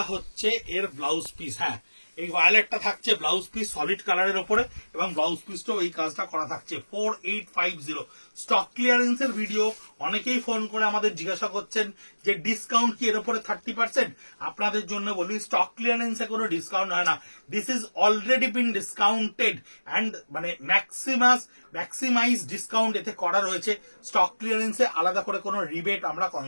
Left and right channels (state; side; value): inverted; both; correlation -1.00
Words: হচ্ছে এর ব্লাউজ পিস। হ্যাঁ, এই ভায়োলেটটা থাকছে ব্লাউজ পিস সলিড কালারের ওপরে, এবং ব্লাউজ পিসটাও এই কাজটা করা থাকছে। 4850 স্টক ক্লিয়ারেন্সের ভিডিও। অনেকেই ফোন করে আমাদের জিজ্ঞাসা করছেন যে ডিসকাউন্ট কি এর উপরে 30%? আপনাদের জন্য বলি স্টক ক্লিয়ারেন্সে কোনো ডিসকাউন্ট হয় না, this is already been discounted and মানে ম্যাক্সিমাইজ ডিসকাউন্ট এতে করা রয়েছে। স্টক ক্লিয়ারেন্সে আলাদা করে কোনো রিবেট আমরা